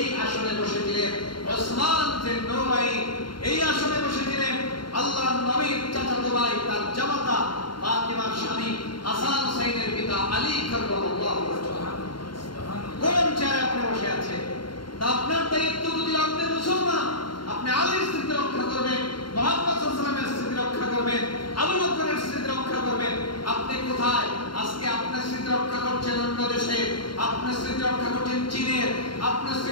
আসনে বসেছিলেন ওসমান যে নূরাইন। এই আসনে বসেছিলেন আল্লাহর নবীর চাচাতো ভাই, তার জামাতা ফাতিমার স্বামী হাসান হুসাইনের পিতা আলী কাররামাল্লাহু ওয়াজহাহু। কোন চেয়ারে আপনি বসে আছেন? তা আপনার দায়িত্ব, যদি আপনি মুসলমান, আপনি আলীর স্থিতি রক্ষা করবেন, মুহাম্মদ সাল্লাল্লাহু আলাইহি ওয়াসাল্লামের স্থিতি রক্ষা করবেন, আবু বকরের স্থিতি রক্ষা করবেন। আপনি কোথায়? আজকে আপনার স্থিতি রক্ষা করছেন অন্য দেশে, আপনার স্থিতি রক্ষা করছেন চীনের, আপনার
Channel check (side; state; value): right; late; 0.72 ms